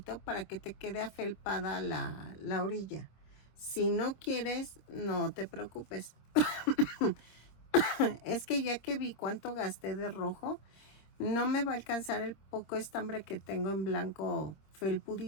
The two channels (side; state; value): right; late; 26 ms